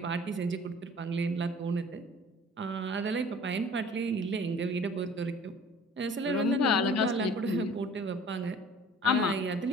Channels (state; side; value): normal; both; correlation 0.49